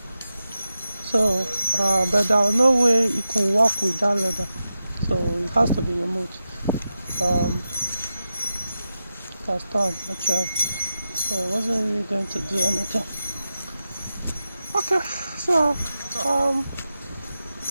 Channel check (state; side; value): inverted; both; correlation -0.91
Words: So, but there was no way it could work with that leather. So it has to be removed. It has torn actually. So it wasn't really going to do anything. Okay, so